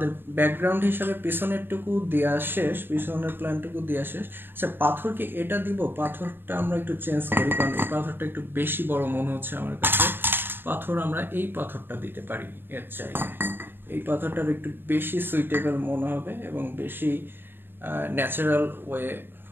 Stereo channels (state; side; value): late; left; 0.099 ms